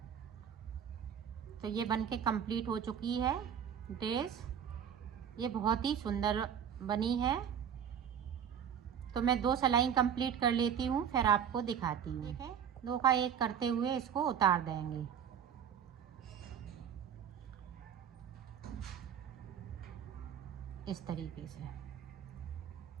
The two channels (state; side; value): quieter; left; 8.5 dB